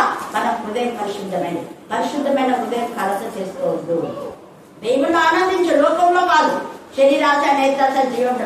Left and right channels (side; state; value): both; identical; correlation 1.00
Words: మన హృదయం పరిశుద్ధమైనది. పరిశుద్ధమైన హృదయం కలస చేసుకోవద్దు. దేవుళ్ళు ఆనందించు, లోకంలో కాదు. శరీరాశ, నేత్రాశ, జీవం